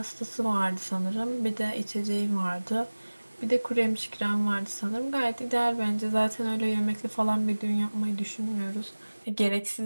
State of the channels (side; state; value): both; inverted; correlation -1.00